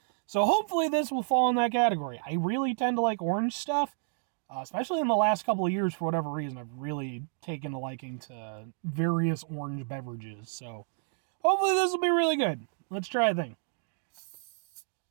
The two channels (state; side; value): silent; left; digital silence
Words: So hopefully this will fall in that category. I really tend to like orange stuff. Especially in the last couple of years, for whatever reason, I've really taken a liking to various orange beverages. So, hopefully this will be really good. Let's try a thing.